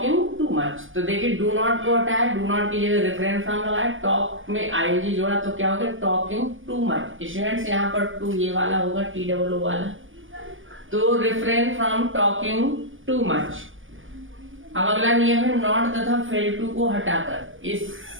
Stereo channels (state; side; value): late; left; 0.57 ms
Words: too much. तो देखिए डू नॉट को हटाया, डू नॉट की जगह रिफ्रेन फ्रॉम लगाया, टॉक में आईएनजी जोड़ा तो क्या हो गया टॉकिंग टू मच। स्टूडेंट्स, यहाँ पर टू ये वाला होगा TOO वाला। तो refrain from talking too much. अब अगला नियम है नॉट तथा फेल टू को हटाकर।